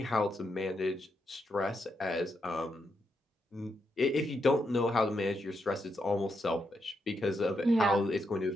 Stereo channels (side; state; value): both; normal; correlation 0.82